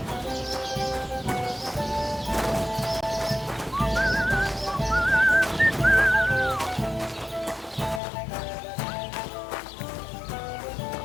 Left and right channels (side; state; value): right; drops out; at 8.0 s